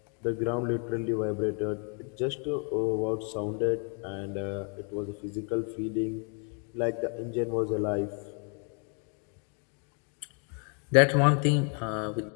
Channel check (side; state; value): right; quieter; 40.0 dB